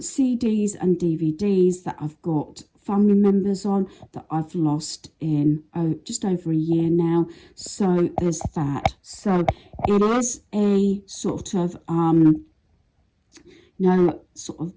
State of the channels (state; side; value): identical; both; correlation 1.00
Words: and DVDs that I've got family members on that I've lost in just over a year now. So there's that. So it is a sort of sort